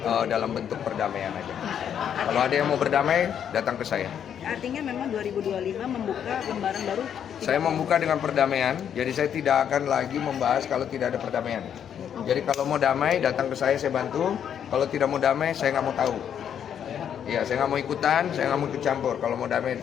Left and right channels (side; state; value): right; quieter; 8.8 dB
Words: dalam bentuk perdamaian aja. Kalau ada yang mau berdamai, datang ke saya. Artinya memang 2025 membuka lembaran baru. Saya membuka dengan perdamaian, jadi saya tidak akan lagi membahas kalau tidak ada perdamaian. Jadi kalau mau damai, datang ke saya bantu. Kalau tidak mau damai, saya nggak mau tahu. Iya, saya nggak mau ikutan, saya nggak mau ikut campur. Kalau mau damai,